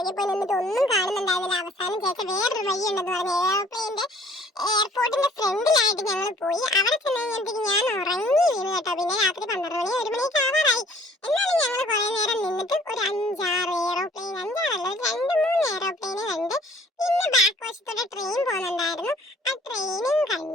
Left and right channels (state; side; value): normal; both; correlation 0.56